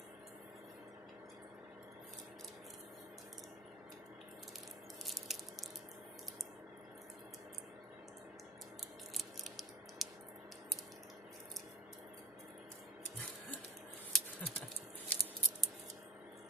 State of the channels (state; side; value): normal; both; correlation 0.40